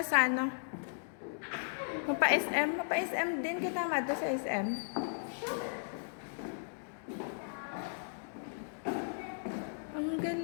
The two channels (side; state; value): right; silent; digital silence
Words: ano. Mapa-SM. Mapa-SM din kita mato sa SM. Ang